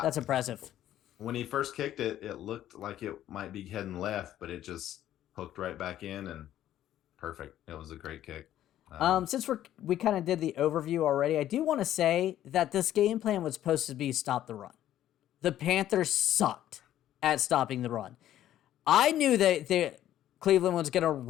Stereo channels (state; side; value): quieter; right; 12.3 dB